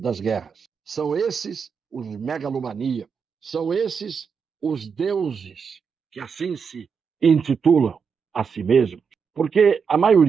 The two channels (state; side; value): quieter; left; 6.1 dB